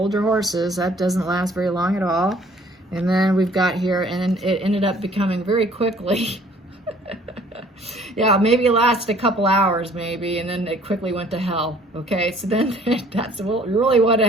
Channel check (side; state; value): both; normal; correlation 0.56